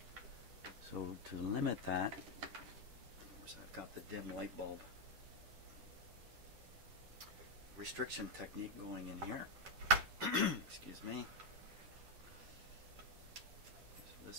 So to limit that, of course I've got the dim light bulb restriction technique going in here. Excuse me. So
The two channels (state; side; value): late; left; 10 ms